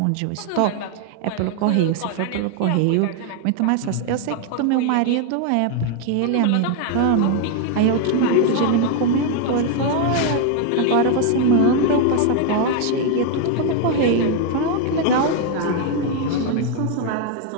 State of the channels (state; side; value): different; both; correlation 0.01